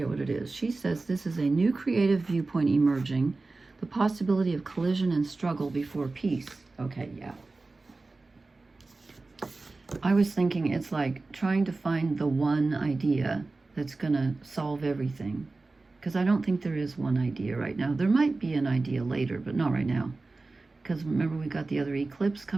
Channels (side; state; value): left; quieter; 3.5 dB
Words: what it is. She says this is a new creative viewpoint emerging, the possibility of collision and struggle before peace. Okay, yeah. I was thinking it's like trying to find the one idea that's going to solve everything. Because I don't think there is one idea right now. There might be an idea later, but not right now. Because remember, we got the other eclipse